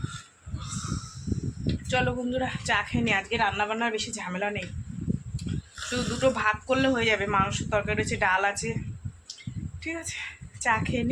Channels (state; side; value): identical; both; correlation 1.00